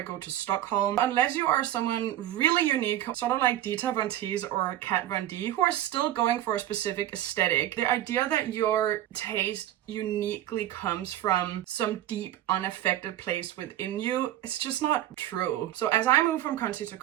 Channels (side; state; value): left; quieter; 12.9 dB